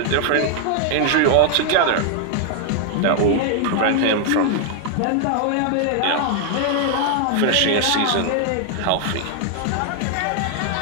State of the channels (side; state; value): both; different; correlation 0.00